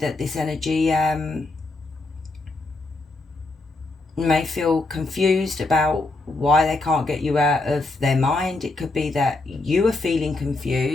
this energy may feel confused about why they can't get you out of their mind. It could be that you are feeling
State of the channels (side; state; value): right; quieter; 3.2 dB